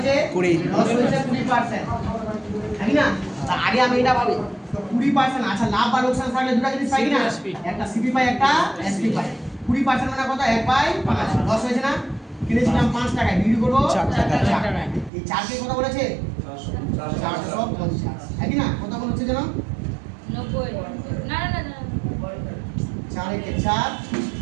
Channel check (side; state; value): left; drops out; at 15.1 s